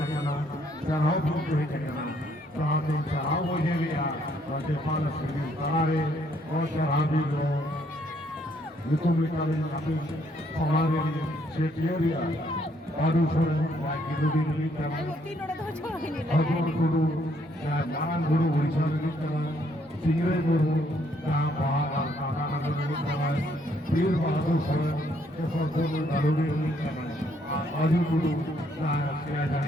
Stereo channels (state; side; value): normal; both; correlation 0.69